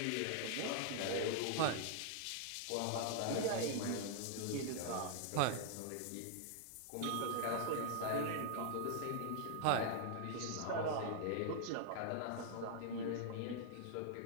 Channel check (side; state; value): both; different; correlation -0.01